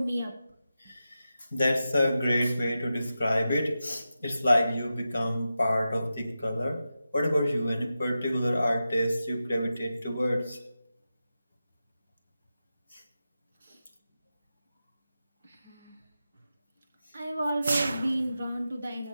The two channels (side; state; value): both; inverted; correlation -0.91